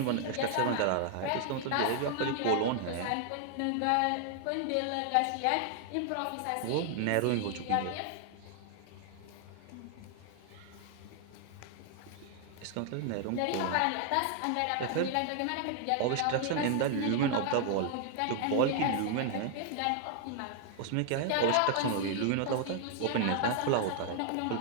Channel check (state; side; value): different; both; correlation 0.00